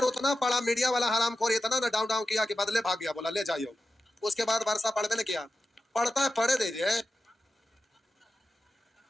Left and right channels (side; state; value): both; normal; correlation 0.91